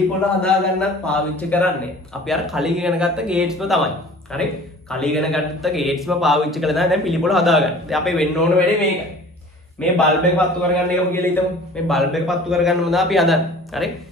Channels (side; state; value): both; normal; correlation 0.46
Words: හදාගන්නත් පාවිච්චි කරන්නේ අපි අර කලින් ඉගෙන ගත්ත ගේට්ස්ම තමයි. හරි, කලින් ඉගෙන ගත්ත ගේට්ස්ම පාවිච්චි කරලා තමයි දැන් පිළිපොළ හදාගන්නේ. දැන් අපි වෙන්න ඕන වැඩේ මේකයි. මේ බල්බ් එක පත්තු කරගන්න එකම කියලා හිතමු. මේ බල්බ් එක පත්තු කරගන්න මොනවද අපි හදන්නේ. හරි,